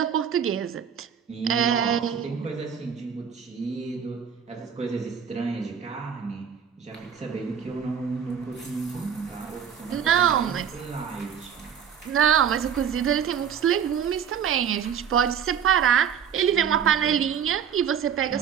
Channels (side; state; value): left; quieter; 8.1 dB